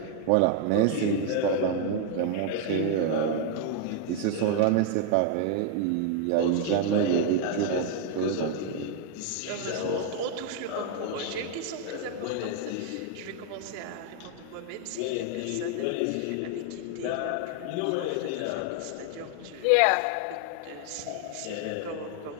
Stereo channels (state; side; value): different; both; correlation 0.00